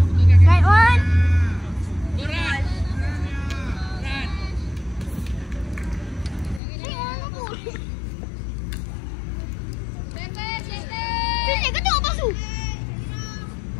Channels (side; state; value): right; drops out; at 6.6 s